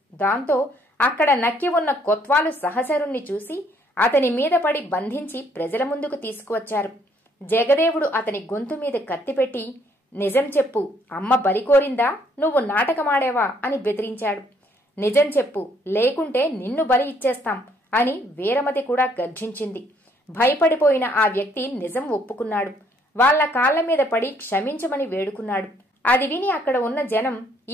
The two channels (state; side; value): normal; both; correlation 0.66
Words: దాంతో అక్కడ నక్కి ఉన్న కొత్వాలు సహచరుణ్ణి చూసి అతని మీద పడి బంధించి ప్రజల ముందుకు తీసుకువచ్చారు. జగదేవుడు అతని గొంతు మీద కత్తిపెట్టి, నిజం చెప్పు, అమ్మ బలి కోరిందా, నువ్వు నాటకమాడేవా అని బెదిరించాడు. నిజం చెప్పు, లేకుంటే నిన్ను బలి ఇచ్చేస్తాం అని వీరమతి కూడా గర్జించింది. భయపడిపోయిన ఆ వ్యక్తి నిజం ఒప్పుకున్నాడు. వాళ్ల కాళ్ల మీద పడి క్షమించమని వేడుకున్నాడు. అది విని అక్కడ ఉన్న జనం,